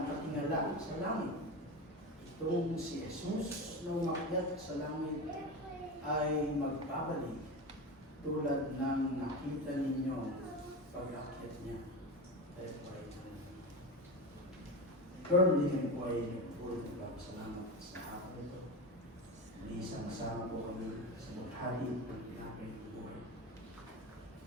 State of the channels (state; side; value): normal; both; correlation 0.23